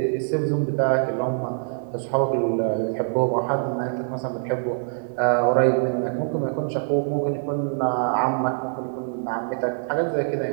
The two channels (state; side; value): silent; left; digital silence